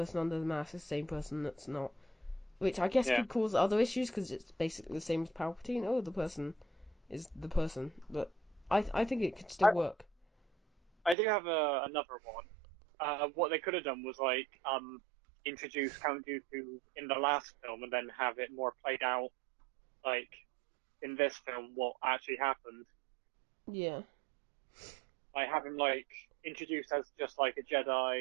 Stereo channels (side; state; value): left; drops out; at 11.2 s